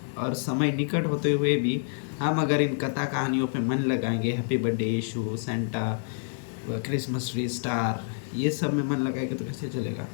और समय निकट होते हुए भी हम अगर इन कथा कहानियों पे मन लगाएंगे, हैप्पी बर्थडे यीशु, सेंटा, क्रिसमस ट्री, स्टार, ये सब में मन लगाएंगे तो कैसे चलेगा।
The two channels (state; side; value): silent; right; 60 dB below the other